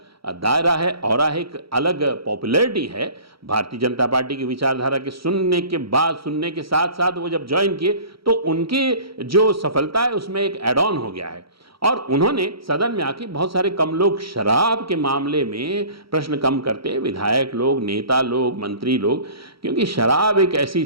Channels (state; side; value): late; left; 0.75 ms